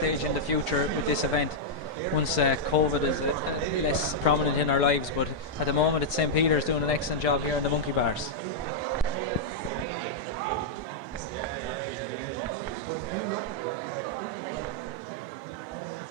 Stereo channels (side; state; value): both; normal; correlation -0.04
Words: in the future with this event once COVID is less prominent in our lives, but at the moment it's St. Peter's doing an excellent job here in the monkey bars.